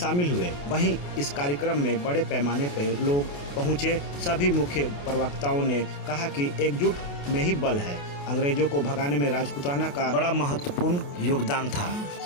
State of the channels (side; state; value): right; late; 28 ms